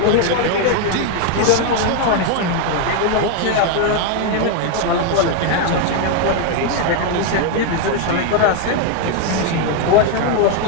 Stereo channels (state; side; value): different; both; correlation 0.01